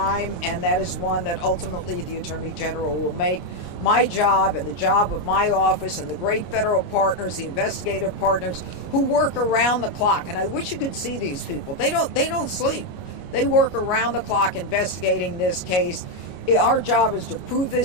and that is one that ultimately the Attorney General will make. My job and the job of my office and the great federal partners, the investigative partners who work around the clock, and I wish you could see these people. They don't sleep. They work around the clock investigating this case. Our job is to prove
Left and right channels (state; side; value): late; right; 22 ms